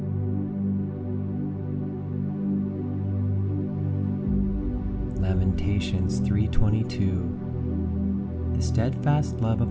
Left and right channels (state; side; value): identical; both; correlation 1.00